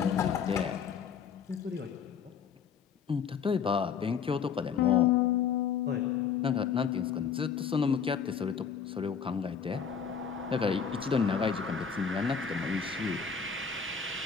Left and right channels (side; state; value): right; quieter; 6.8 dB